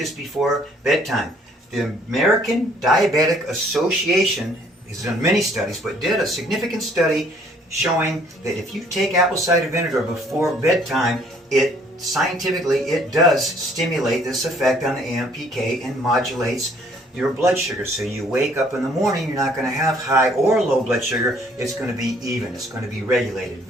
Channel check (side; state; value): both; normal; correlation 0.61